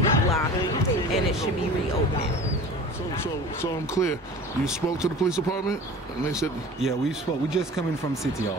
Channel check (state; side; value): normal; both; correlation 0.39